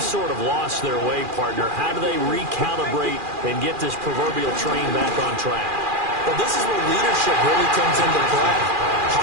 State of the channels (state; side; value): late; left; 2.4 ms